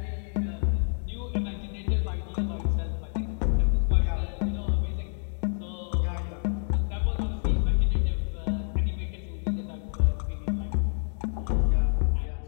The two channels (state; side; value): silent; right; 59 dB below the other